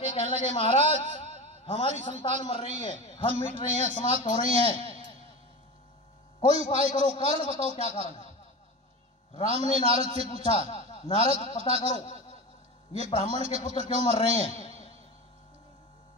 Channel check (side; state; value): both; normal; correlation 0.27